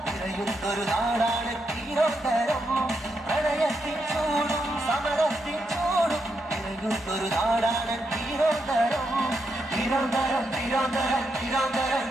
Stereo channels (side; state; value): both; normal; correlation 0.82